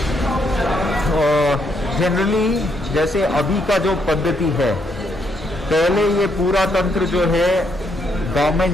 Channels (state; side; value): normal; both; correlation 0.75